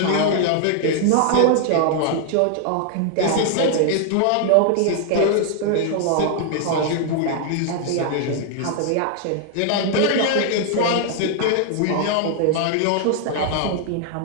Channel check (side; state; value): both; different; correlation 0.00